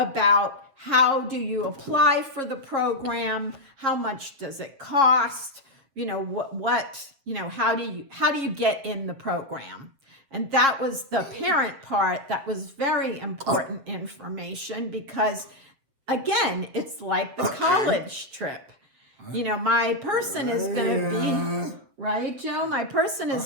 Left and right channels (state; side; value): late; left; 7.5 ms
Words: how do you apply for the program, how much does it cost, how do you get in the program? And that was the parent part. That was very important information because, again, it's like the college trip. My person is going to be, right, Joe? My person is